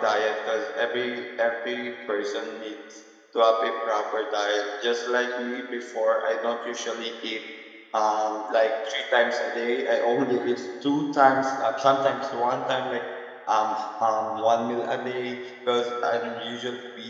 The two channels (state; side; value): identical; both; correlation 1.00